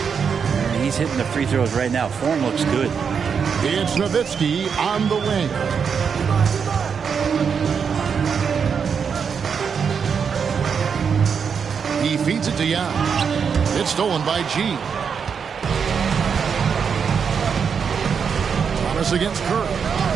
he's hitting the free throws right now. Form looks good. It's Nowitzki on the wing. He feeds it to Young. It's stolen by G. Thomas against Curry.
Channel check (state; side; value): quieter; left; 6.5 dB